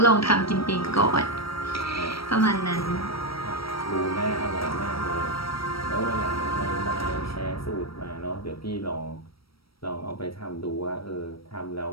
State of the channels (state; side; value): late; right; 0.75 ms